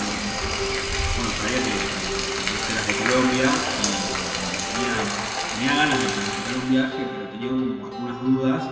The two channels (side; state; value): both; identical; correlation 1.00